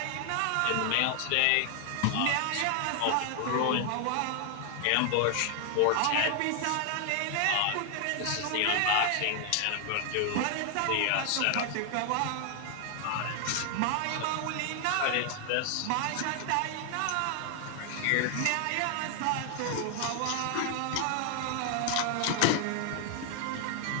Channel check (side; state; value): both; different; correlation 0.00